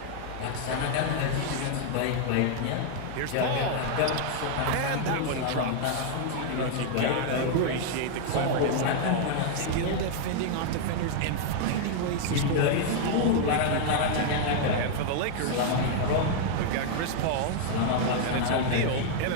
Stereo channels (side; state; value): both; different; correlation 0.00